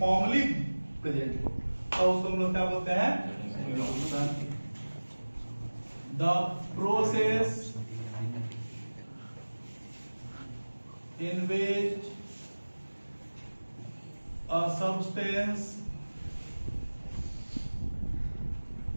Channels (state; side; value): inverted; both; correlation -1.00